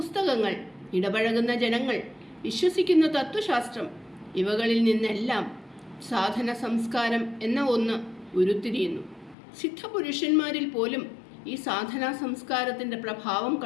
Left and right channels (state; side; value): drops out; right; at 9.3 s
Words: ഇടപഴകുന്ന ജനങ്ങൾ, വിശ്വസിക്കുന്ന തത്വശാസ്ത്രം, ഇവകളിൽ നിന്നെല്ലാം സാധന സംസ്കാരം എന്ന ഒന്ന് ഉരുത്തിരിയുന്നു. സിദ്ധപുരുഷന്മാരിൽ പോലും ഈ സാധനാ സംസ്കാരത്തിൻ്റെ പ്രഭാവം